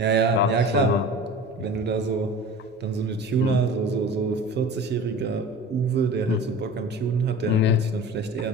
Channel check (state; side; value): normal; both; correlation 0.37